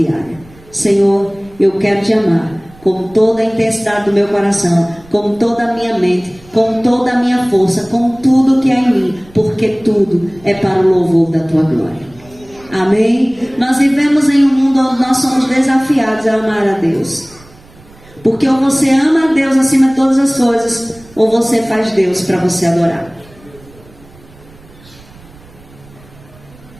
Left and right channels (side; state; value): right; noise; rumble, 24 dB below the sound